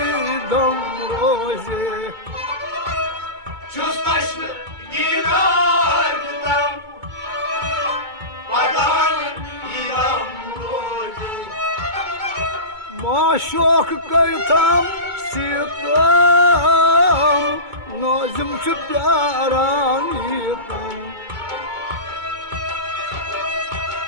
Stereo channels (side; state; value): left; late; 2.2 ms